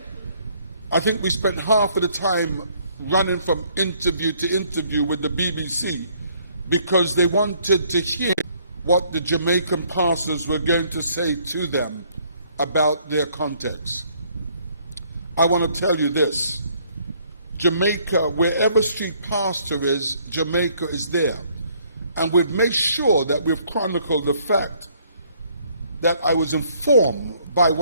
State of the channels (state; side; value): inverted; both; correlation -0.64